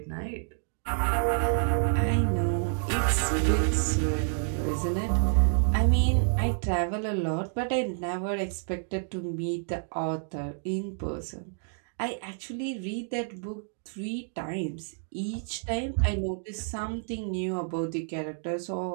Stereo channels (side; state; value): left; silent; digital silence